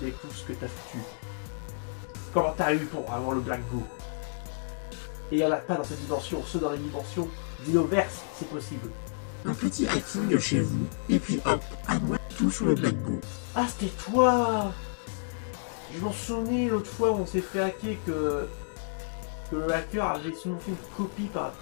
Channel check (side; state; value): right; silent; digital silence